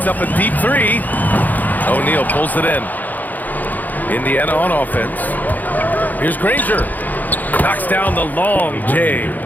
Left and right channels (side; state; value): right; late; 0.083 ms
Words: up a deep 3. O'Neal pulls it in. Indiana on offense. Here's Granger. Knocks down the long J.